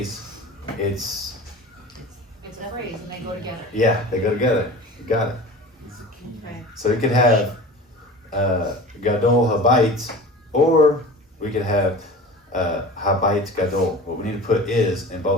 it's It's a phrase and they go together. yeah, they go together. You got it. This is a key. Okay. So we could have Gadol Habayit, or we could have Habayit Gadol. What we need to put is in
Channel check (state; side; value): normal; both; correlation 0.37